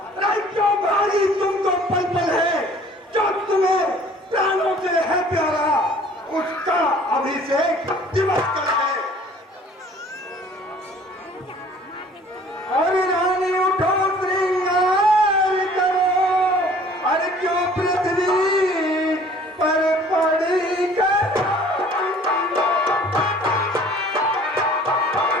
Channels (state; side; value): normal; both; correlation 0.52